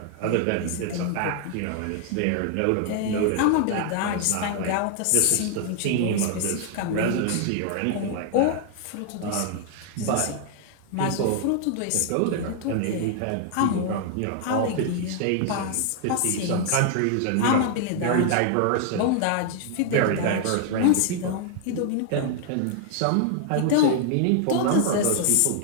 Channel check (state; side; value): different; both; correlation 0.00